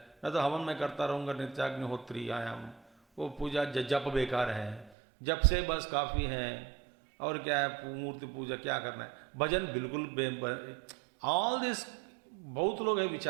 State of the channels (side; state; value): left; drops out; at 4.9 s